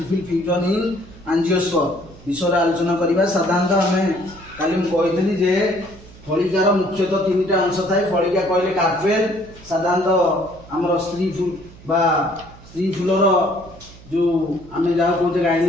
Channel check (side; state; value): right; noise; hum, 21 dB below the sound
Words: fusion in angiosperm विषय आलोचना करबा। साधारणतः आमे काली कही जे फलिकार मुख्यतः तीनटा अंश थाए। फलिका कहले कार्पेल, साधारणतः आमर स्त्री फूल बा स्त्री फूलर जो आमे जहाँ कहते